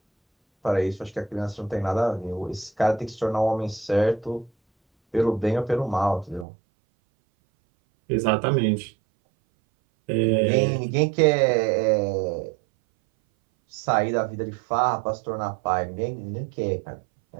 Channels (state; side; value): drops out; left; at 6.5 s